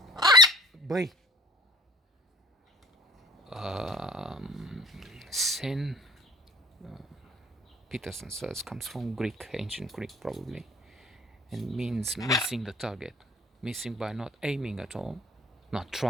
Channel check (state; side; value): normal; both; correlation 0.47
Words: sin, Peterson says, comes from Greek, ancient Greek probably, and means missing the target, missing by not aiming at all, not